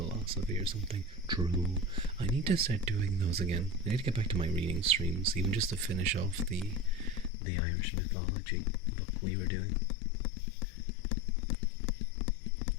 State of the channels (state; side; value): drops out; right; at 7.3 s